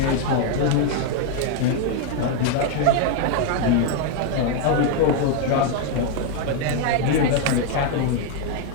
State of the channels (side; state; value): both; different; correlation 0.00